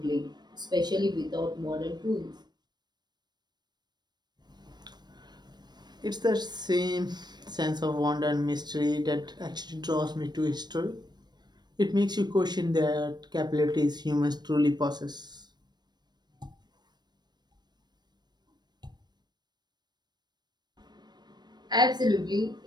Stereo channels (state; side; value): late; left; 0.21 ms